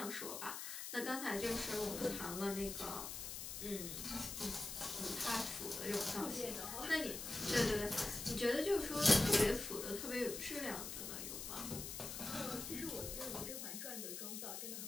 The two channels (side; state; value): left; noise; hiss, 6 dB below the sound